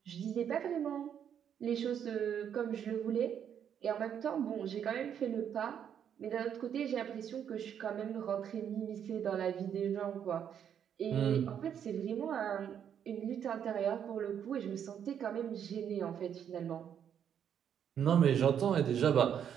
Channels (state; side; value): quieter; left; 8.7 dB